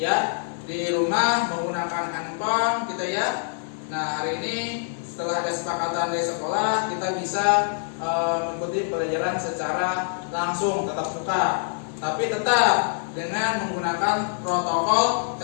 di rumah menggunakan handphone kita ya. Nah, hari ini setelah ada kesepakatan dari sekolah, kita bisa mengikuti pelajaran secara langsung tatap muka, tapi tetap dengan menggunakan protokol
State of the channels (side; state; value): right; silent; digital silence